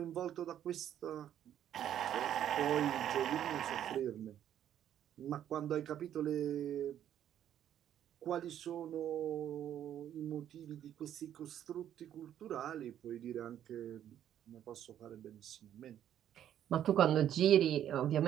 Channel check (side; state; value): left; quieter; 10.6 dB